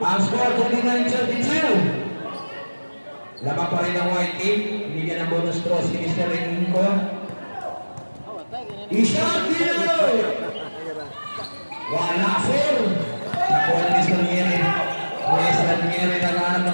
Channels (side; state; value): both; inverted; correlation -1.00